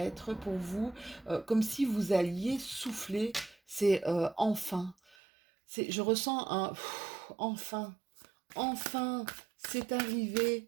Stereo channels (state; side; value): drops out; left; at 5.2 s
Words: pour vous comme si vous alliez souffler. C'est enfin. Je ressens un enfin. Enfin, c'est arrivé,